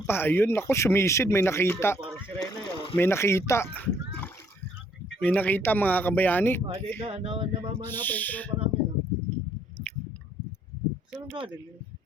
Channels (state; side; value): normal; both; correlation 0.65